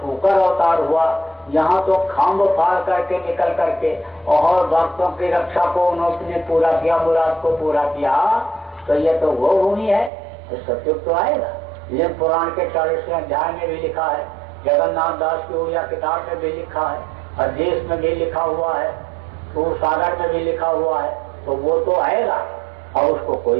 शुकर अवतार हुआ, यहाँ तो खम्भ फाड़ करके निकल करके और भक्तों की रक्षा को उन्होंने पूरा किया, मुराद को पूरा किया। तो ये तो वो भूमि है, तो सतयुग तो आएगा। ये पुराण के 40वें अध्याय में भी लिखा है, जगन्नाथ दास की उड़िया किताब में भी लिखा है, अध्येश में भी लिखा हुआ है, सूर सागर में भी लिखा हुआ है। तो वो तो आएगा और उसको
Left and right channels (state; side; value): drops out; left; at 10.1 s